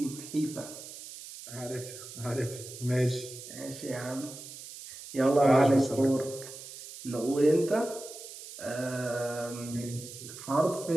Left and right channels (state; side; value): noise; right; hiss, 13 dB below the sound